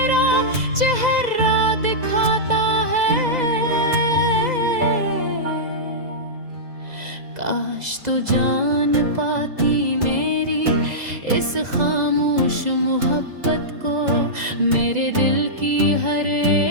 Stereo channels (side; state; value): left; late; 2.0 ms